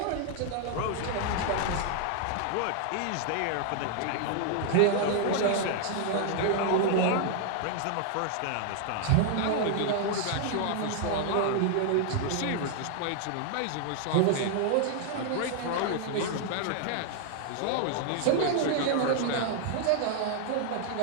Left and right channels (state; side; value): different; both; correlation 0.00